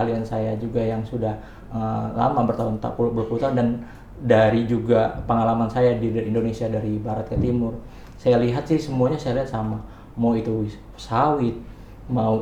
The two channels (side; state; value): both; identical; correlation 1.00